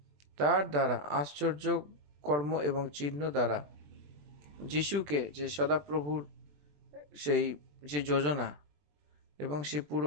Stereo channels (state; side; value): late; left; 20 ms